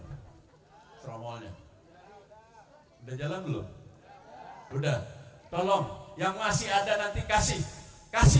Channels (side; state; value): both; identical; correlation 1.00